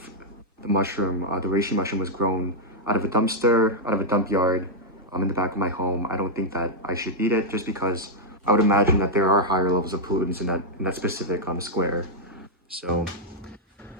mushroom, the reishi mushroom was grown out of a dumpster, out of a dump yard, in the back of my home, I don't think that I should eat it just because I would imagine that there are higher levels of pollutants in that specific square. So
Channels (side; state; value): both; normal; correlation -0.05